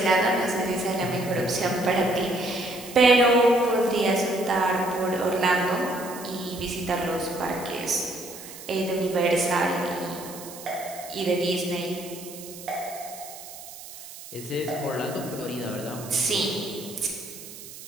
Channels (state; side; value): noise; right; hiss, 14 dB below the sound